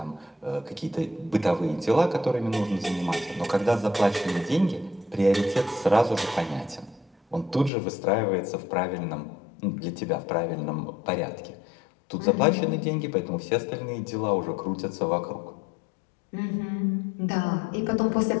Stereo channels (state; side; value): drops out; right; at 7.7 s